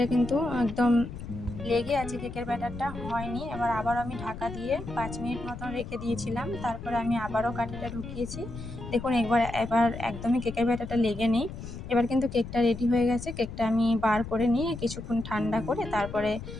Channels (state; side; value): noise; left; rumble, 10 dB below the sound